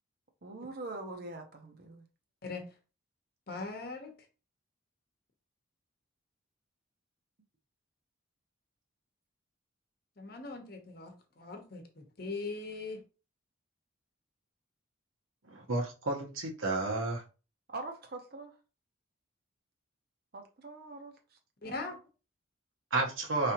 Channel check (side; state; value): both; normal; correlation -0.01